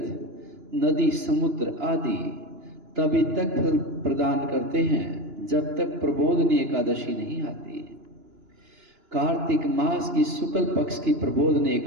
नदी, समुद्र आदि तभी तक फल प्रदान करते हैं जब तक प्रबोधनी एकादशी नहीं आती। कार्तिक मास की शुक्ल पक्ष की प्रबोधनी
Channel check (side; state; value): left; late; 2.9 ms